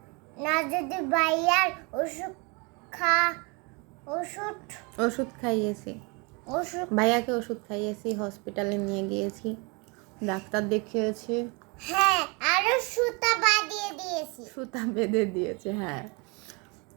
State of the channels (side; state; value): left; quieter; 30.4 dB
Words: না, যদি ভাইয়ার ওষুধ খাইয়েছি, ভাইয়াকে ওষুধ খাইয়েছি, হসপিটালে নিয়ে গিয়েছি, ডাক্তার দেখিয়েছি। হ্যাঁ আরো সুতা বাঁধিয়ে দিয়েছি। সুতা বেঁধে দিয়েছে, হ্যাঁ,